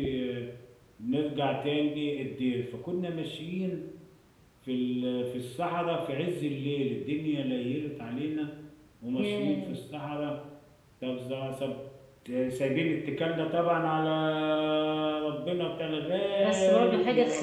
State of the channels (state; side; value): identical; both; correlation 1.00